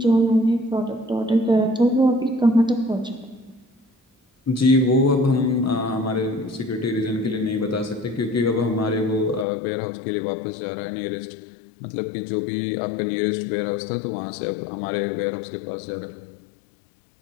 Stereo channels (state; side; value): drops out; right; at 9.5 s